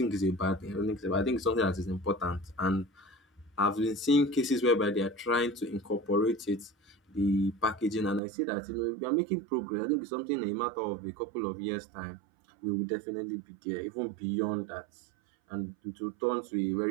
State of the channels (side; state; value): left; drops out; at 8.2 s